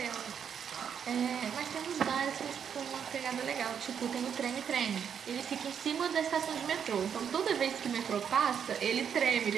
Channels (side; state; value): left; quieter; 7.8 dB